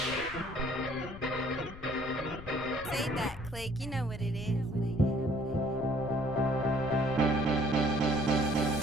SayDat, click, you know what it is.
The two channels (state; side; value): noise; left; rumble, 15 dB below the sound